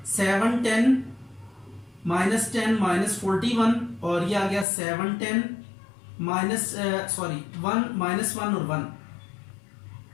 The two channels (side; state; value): right; drops out; at 4.7 s